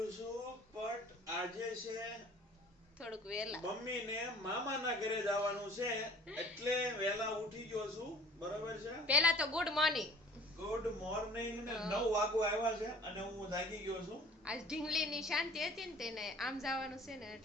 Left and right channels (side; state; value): both; normal; correlation 0.50